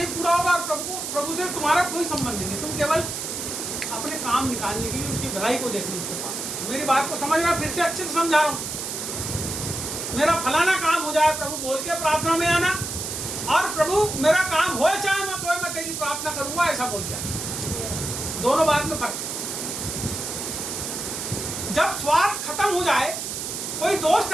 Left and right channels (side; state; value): right; noise; hiss, 5 dB below the sound